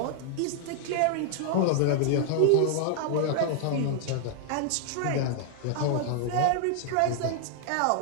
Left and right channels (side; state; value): both; different; correlation -0.01